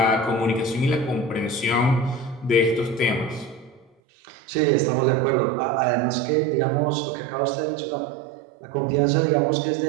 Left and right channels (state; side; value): drops out; left; at 3.9 s